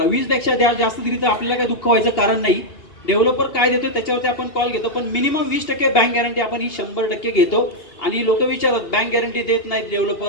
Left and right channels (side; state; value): right; late; 2.8 ms